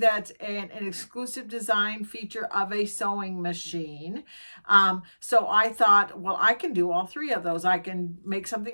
an exclusive design feature of a sewing machine. So I thought, well, I can do all three of those. I can make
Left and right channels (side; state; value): both; inverted; correlation -1.00